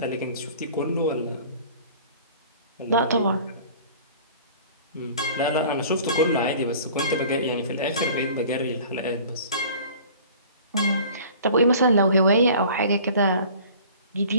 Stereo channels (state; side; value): inverted; both; correlation -0.46